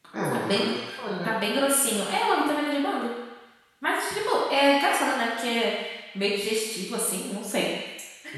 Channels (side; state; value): both; identical; correlation 1.00